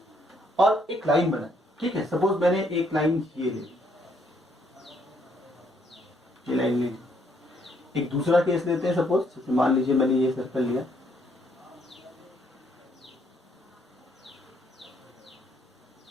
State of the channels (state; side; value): normal; both; correlation 0.70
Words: और एक लाइन बनाई, ठीक है। सपोज मैंने एक लाइन ये ले ली, ये लाइन ले ली। एक दूसरा केस लेते हैं, सपोज मान लीजिए मैंने ये सर्कल लिया,